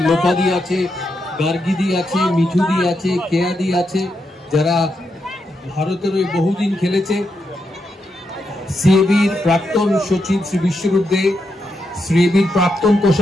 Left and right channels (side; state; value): both; normal; correlation 0.83